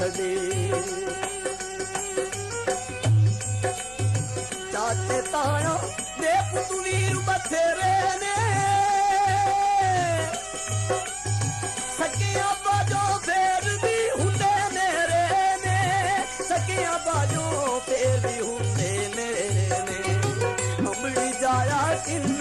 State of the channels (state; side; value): noise; left; hum, 23 dB below the sound